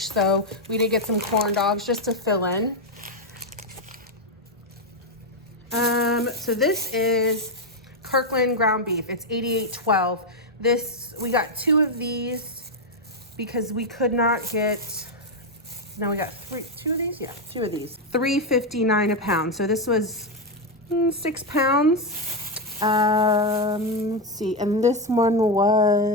So we did get some corn dogs just to fill in. So this is Kirkland ground beef. It's $88.12. This, we got 2 of these because we could not get, no, we got 2 of these? Yeah, 2 of these. $3.59 a pound. So this was 6 pounds. Let's see, and this one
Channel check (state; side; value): normal; both; correlation 0.04